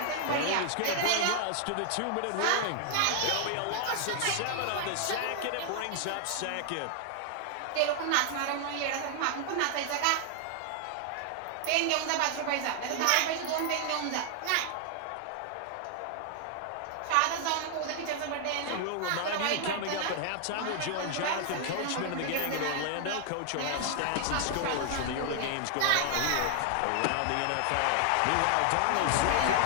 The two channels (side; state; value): both; different; correlation 0.00